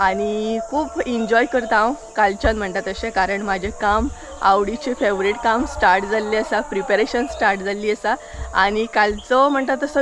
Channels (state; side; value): identical; both; correlation 1.00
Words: आनी खूब एन्जॉय करता हांव कालच्यान म्हणटा तशें. कारण म्हाजें काम आवडीचें फेवरेट काम स्टार्ट जाल्लें आसा, प्रिपेरेशन स्टार्ट जाल्ली आसा. आनी कालचो म्हणटा